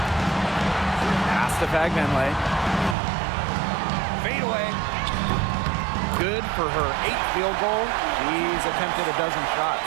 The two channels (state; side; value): drops out; left; at 3.0 s